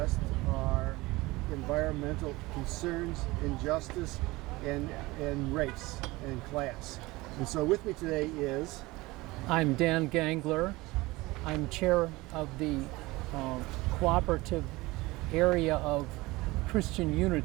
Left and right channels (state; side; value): quieter; left; 21.1 dB